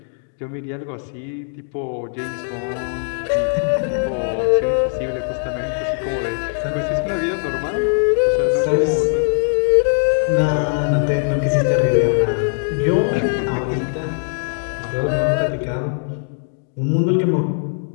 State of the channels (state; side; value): silent; right; 60 dB below the other